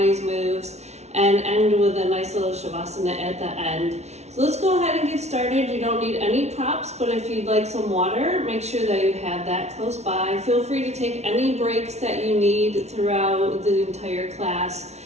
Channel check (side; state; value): left; late; 0.32 ms